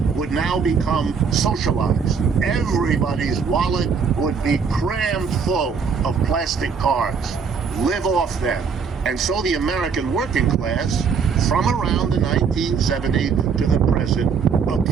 would now become socialized. Everybody's wallet would be crammed full of plastic cards. Live off them. And so the American working class, from around the 1970s to the present,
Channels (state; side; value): quieter; left; 5.9 dB